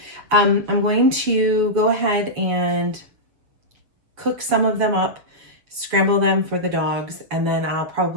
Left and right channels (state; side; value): late; left; 7.1 ms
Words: I'm going to go ahead and cook some of them up, scramble them for the dogs, and then I'll